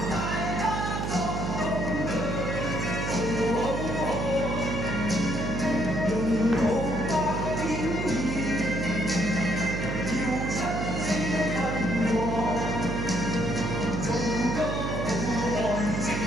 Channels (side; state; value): right; noise; hum, 2 dB below the sound